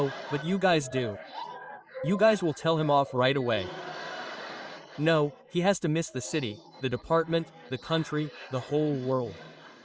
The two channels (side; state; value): both; identical; correlation 1.00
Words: but you guys do. You guys will tell him off right away. No, he has to miss the city, the department, the country, the whole world.